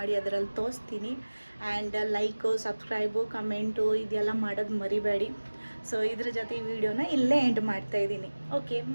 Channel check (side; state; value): both; inverted; correlation -1.00